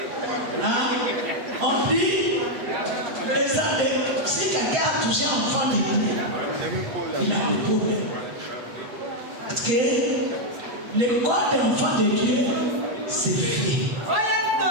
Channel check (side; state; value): left; late; 8.1 ms